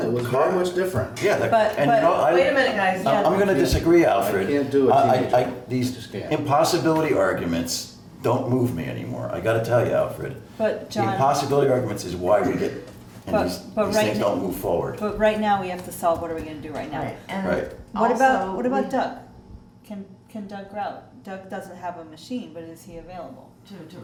it was very much different. Yeah, But- and you know, I. Wait a minute, guys. I'm gonna disagree, Alfred. I can't do a teenager. I These just can't. impossibility arguments don't move me anymore, I gotta tell you, Alfred. But The John, impossibility arguments is why we get, and But- these but these right things now- don't move forward. but right now we have to solve, what are we gonna do right now? Right, and Right. What about, also what about we- Doug? Can Doug route? Doug doesn't have a machine, but is he available? To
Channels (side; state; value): both; identical; correlation 1.00